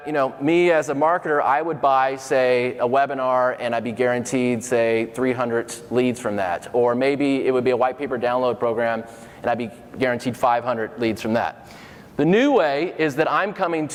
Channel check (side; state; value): both; identical; correlation 1.00